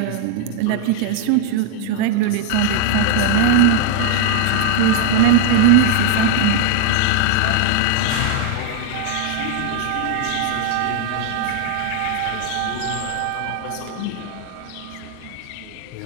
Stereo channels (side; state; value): both; different; correlation 0.00